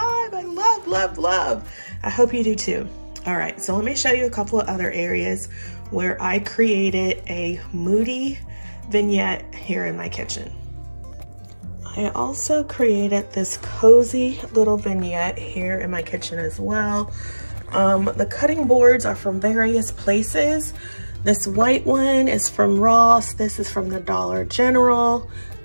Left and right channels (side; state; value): both; inverted; correlation -1.00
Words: I love. I hope you do too. All right, so let me show you a couple of other areas where I created a moody vignette here in my kitchen. I also created this cozy little vignette here in my kitchen as well. The cutting boards are from various places. This white one is from Ross. This is from the Dollar General.